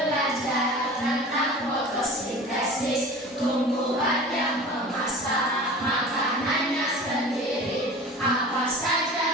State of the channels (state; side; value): normal; both; correlation 0.38